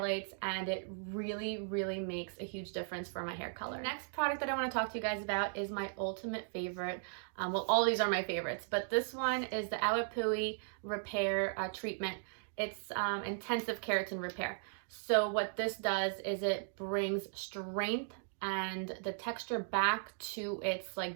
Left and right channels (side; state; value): left; silent; digital silence